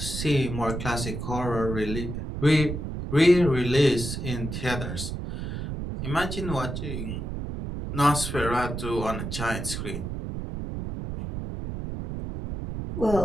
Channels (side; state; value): right; noise; rumble, 5 dB below the sound